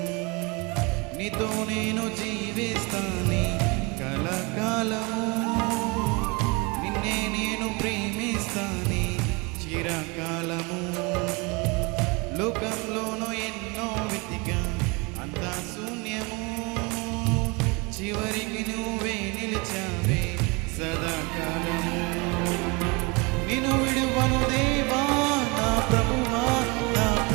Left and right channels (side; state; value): left; quieter; 28.4 dB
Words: నీతో నేను జీవిస్తాని కలకాలము, నిన్నే నేను ప్రేమిస్తాని చిరకాలము. లోకంలోనూ ఎన్నో వెతికా అంతా శూన్యము, చివరికి నువ్వే నిలిచావే సదాకాలము. నిన్ను విడువను దేవా నా ప్రభువా నా